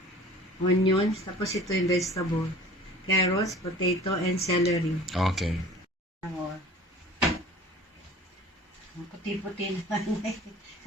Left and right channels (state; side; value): normal; both; correlation 0.44